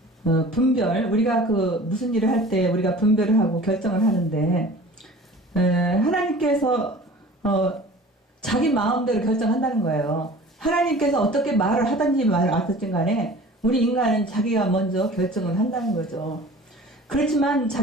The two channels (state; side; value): normal; both; correlation 0.43